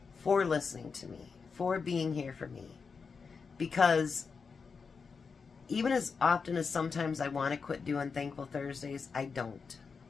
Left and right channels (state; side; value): quieter; right; 5.3 dB